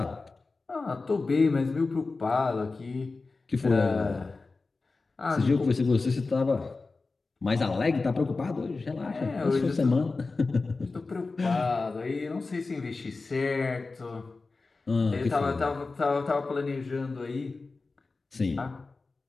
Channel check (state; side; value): quieter; right; 3.8 dB